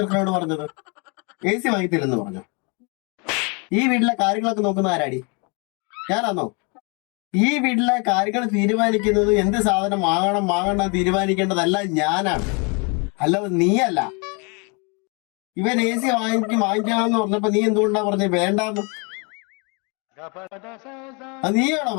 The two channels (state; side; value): quieter; right; 33.0 dB